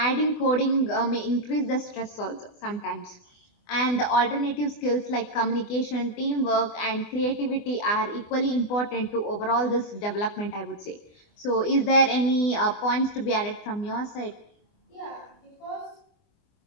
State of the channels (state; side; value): late; right; 24 ms